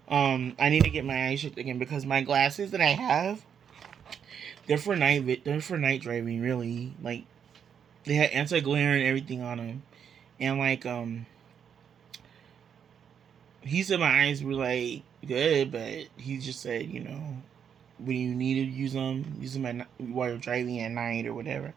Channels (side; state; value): left; quieter; 7.8 dB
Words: I need to get my eyes checked again because my glasses that I have, they're for night driving. Really, like they had anti glare and everything on them, and like he said my eyes were like good, but he just said, you know, when you need to use them while you're driving at night or whatever.